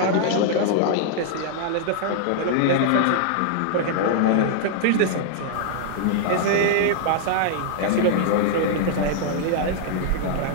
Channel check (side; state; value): both; different; correlation -0.01